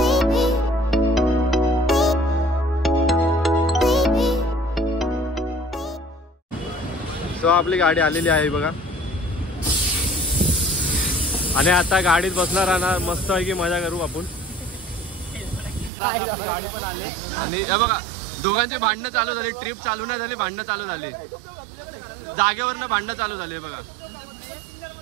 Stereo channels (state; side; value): drops out; left; at 15.9 s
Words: सो आपली गाडी आलेली आहे बघा आणि आता गाडीत बसणार राहणार. मस्त आहे की मजा करू आपण. आपली गाडी पण आली आणि हे बघा, दोघांची भांडणं चालू झाली. ट्रिप चालू नाही झाली, भांडणं चालू झाली. जागेवरनं भांडणं चालू झाली. बघा